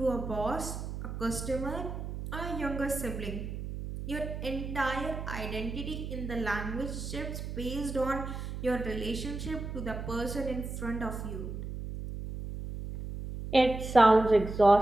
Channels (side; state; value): right; noise; hum, 7 dB below the sound